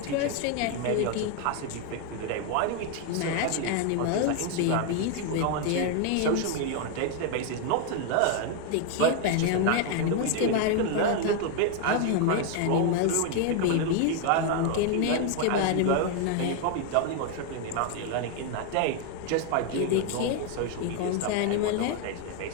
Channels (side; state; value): both; different; correlation 0.01